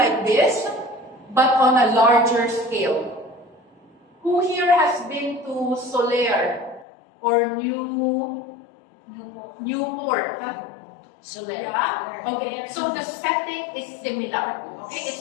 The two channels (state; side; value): drops out; right; at 6.9 s